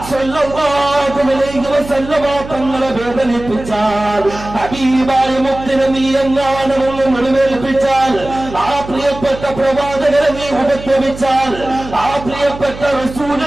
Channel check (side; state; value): right; noise; hum, 13 dB below the sound